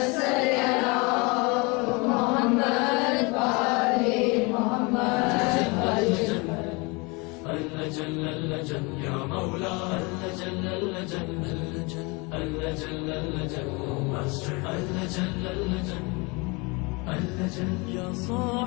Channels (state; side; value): quieter; right; 28.0 dB